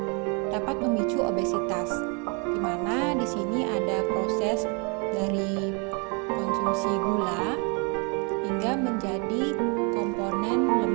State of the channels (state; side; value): quieter; left; 34.4 dB